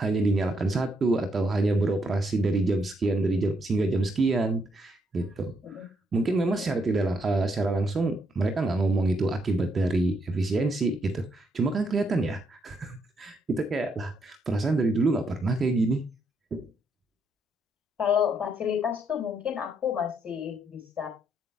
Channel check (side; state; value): both; normal; correlation 0.76